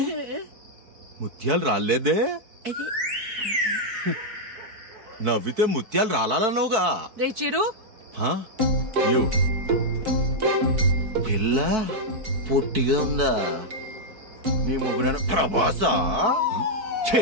ముత్యాలు రాలేదే? నవ్వితే ముత్యాలు రాలన్నావుగా. రే చిరు, పిల్ల పొట్టిగా ఉందా? నీ ముగ్గురు ప్రభాసా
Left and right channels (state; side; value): late; left; 4.6 ms